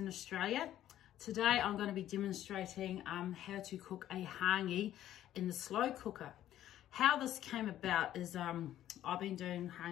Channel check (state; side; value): quieter; right; 12.4 dB